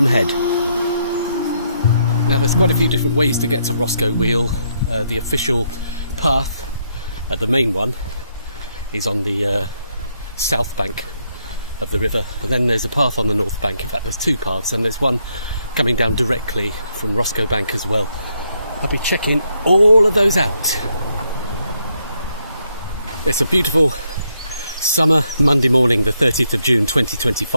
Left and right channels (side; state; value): both; inverted; correlation -0.76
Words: Head. Now, there's quite a few different ways to get to Roscoe Wheel. The official path, the main one, is on the south bank of the river, and then there's a path on the north bank. In fact, there's two paths, and there's one coming down directly from Roscoe Bank as well. I'll be checking all of those out. It's a beautiful summer Monday morning, the 30th of June